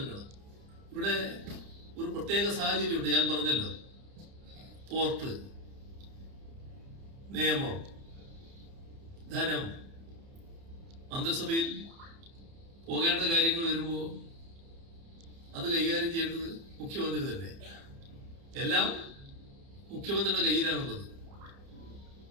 ഇവിടെ ഒരു പ്രത്യേക സാഹചര്യമുണ്ട്. ഞാൻ പറഞ്ഞല്ലോ, പോർട്ട് നിയമം, ധനം, മന്ത്രിസഭയിൽ പോകേണ്ട കാര്യങ്ങൾ വരുമ്പോൾ അത് കൈകാര്യം ചെയ്യേണ്ടത് മുഖ്യമന്ത്രി തന്നെ. എല്ലാം മുഖ്യമന്ത്രിയുടെ കയ്യിലാണുള്ളത്.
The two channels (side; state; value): left; late; 30 ms